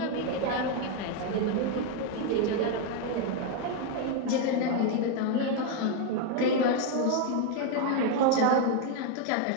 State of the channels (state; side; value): different; both; correlation 0.01